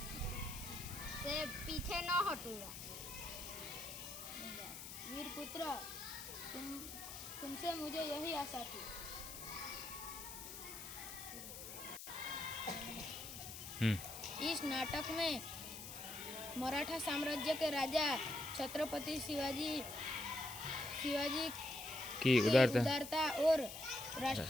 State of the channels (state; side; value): noise; left; hiss, 10 dB below the sound